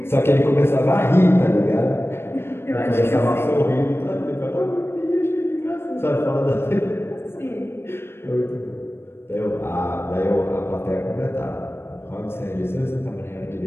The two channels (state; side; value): late; right; 0.12 ms